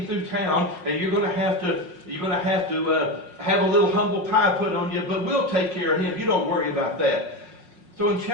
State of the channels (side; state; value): left; late; 5.5 ms